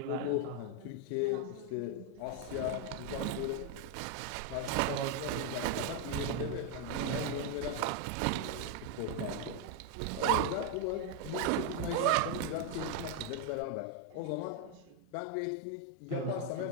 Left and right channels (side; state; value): both; different; correlation 0.01